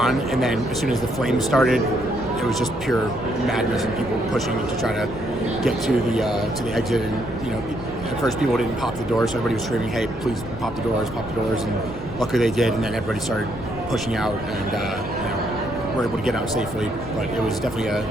And then as soon as the flames started, it was just pure madness and people pushing to try to get to the exit. And, at first people didn't pop the doors, so everybody was screaming, hey, please pop the doors, and luckily they did, and then everybody started pushing out, and were able to get out safely. But it was definitely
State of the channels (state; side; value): noise; left; rumble, 13 dB below the sound